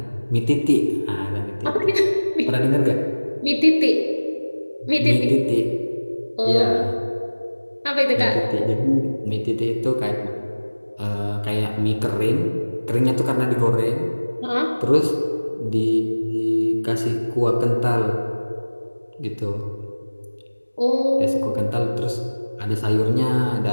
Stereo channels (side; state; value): both; inverted; correlation -1.00